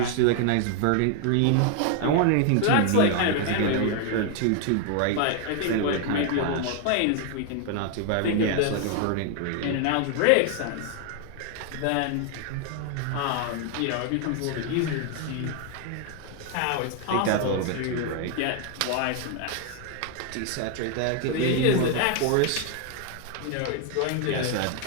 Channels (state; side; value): different; both; correlation 0.00